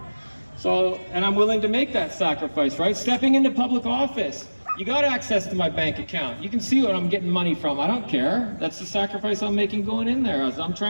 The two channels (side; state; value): both; inverted; correlation -1.00